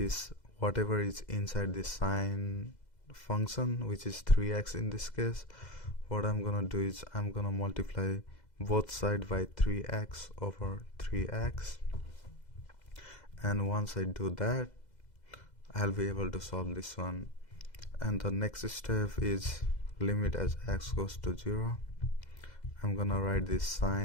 whatever is inside this sine function, which is 3x in this case. What I'm gonna do is I'm gonna multiply both sides by 3x over 3x, and once I do that, I'll be able to solve this one. And the next step is limit as x goes to 0. I'm gonna write this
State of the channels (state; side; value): late; right; 2.0 ms